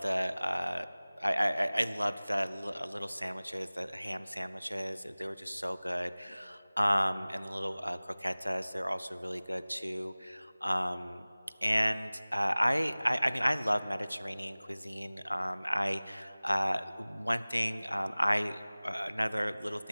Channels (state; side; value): inverted; both; correlation -1.00